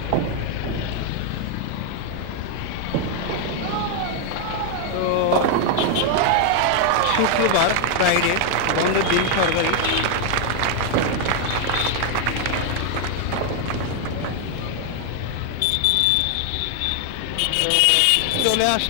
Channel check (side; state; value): both; different; correlation 0.00